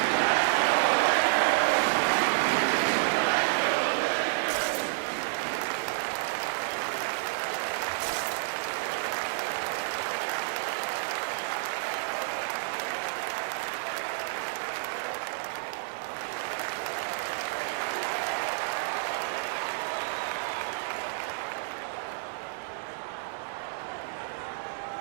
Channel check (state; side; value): silent; left; digital silence